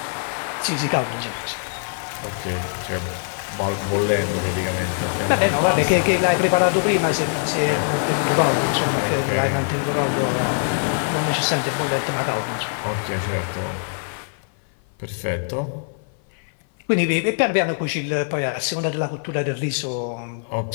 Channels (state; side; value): silent; right; 57 dB below the other